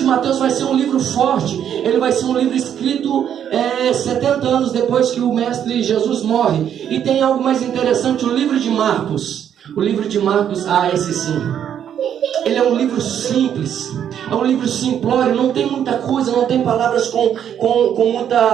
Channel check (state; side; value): quieter; left; 9.3 dB